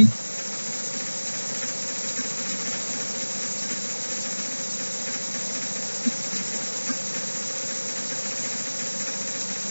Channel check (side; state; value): both; inverted; correlation -1.00